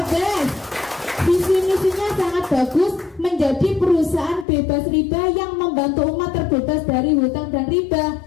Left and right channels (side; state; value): right; drops out; at 4.5 s